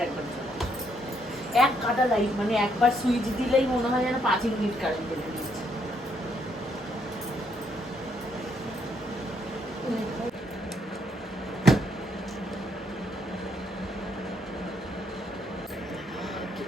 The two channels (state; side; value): normal; both; correlation 0.73